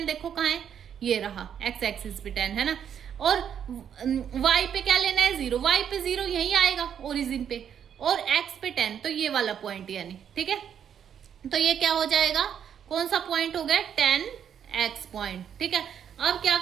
देखो कहाँ है, ये रहा x एक्सिस पे 10 है ना, और y पे क्या लेना है 0, y पे 0 यही आएगा ओरिजिन पे, और x पे 10 तो ये वाला पॉइंट यानी, ठीक है। तो ये क्या हो जाएगा, कौन सा पॉइंट हो गया 10x पॉइंट, ठीक है। अब क्या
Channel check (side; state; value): left; quieter; 8.6 dB